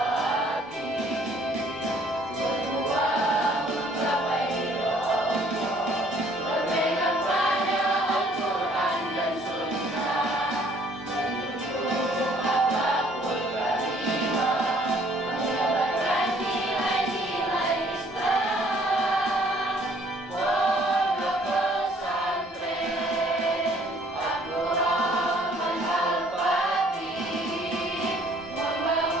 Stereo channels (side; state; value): both; normal; correlation 0.60